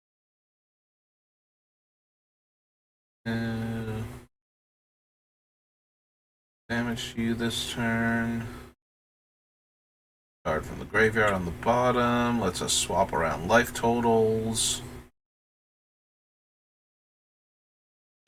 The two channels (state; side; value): identical; both; correlation 1.00